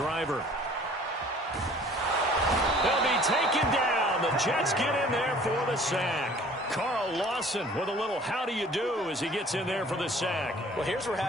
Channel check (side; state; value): both; normal; correlation 0.51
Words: They'll be taken down. The Jets get in there for the sack. Carl Lawson with a little how do you do as he gets in there for the sack. Well, here's where